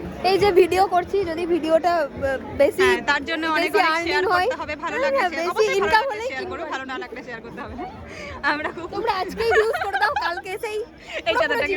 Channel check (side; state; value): both; identical; correlation 1.00